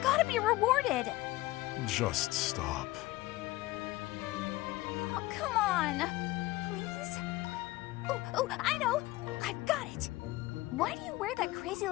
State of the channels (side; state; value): right; quieter; 18.9 dB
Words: be rewarded. Just stop. Oh, come on. Please? Oh, I know. I've got it. Why do you wear that